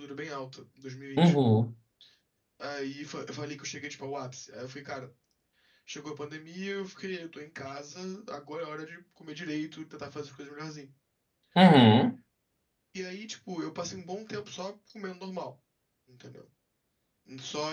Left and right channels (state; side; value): identical; both; correlation 1.00